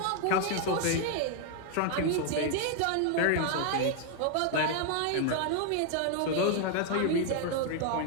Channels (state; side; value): different; both; correlation 0.00